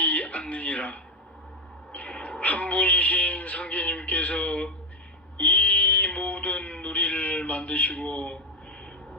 않느니라. 한 분이신 상제님께서 이 모든 누리를 만드시고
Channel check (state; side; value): normal; both; correlation 0.08